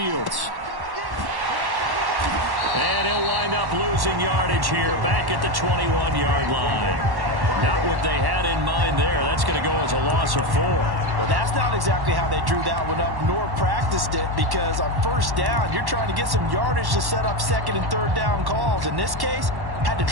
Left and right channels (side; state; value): left; late; 1.1 ms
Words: And he'll wind up losing yardage here back at the 21-yard line. Not what they had in mind there. That's going to go as a loss of 4. Well, that's not exactly how they drew that one up nor practiced it, because on first down, you're trying to get some yardage to set up second and third down calls. In this case, had to